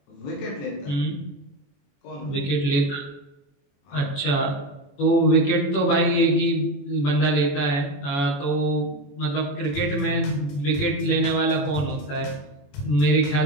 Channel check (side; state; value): right; late; 21 ms